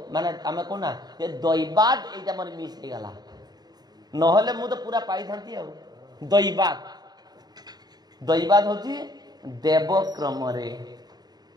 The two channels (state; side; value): late; left; 0.20 ms